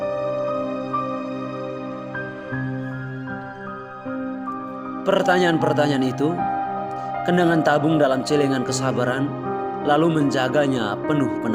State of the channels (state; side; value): identical; both; correlation 1.00